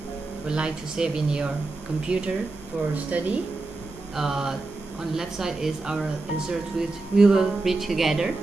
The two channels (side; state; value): left; quieter; 3.3 dB